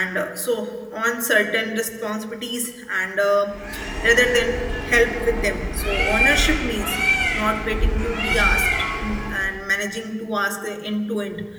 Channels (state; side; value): identical; both; correlation 1.00